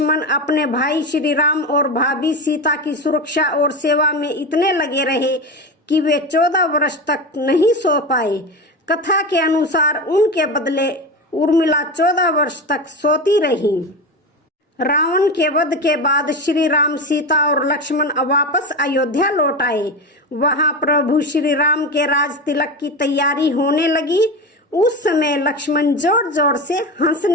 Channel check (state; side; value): normal; both; correlation 0.22